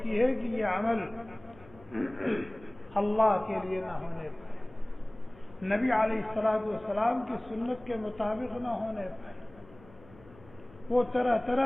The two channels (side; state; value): left; noise; hum, 23 dB below the sound